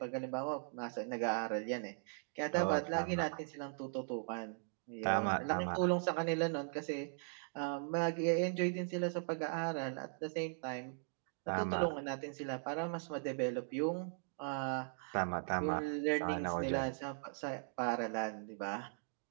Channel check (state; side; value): silent; left; digital silence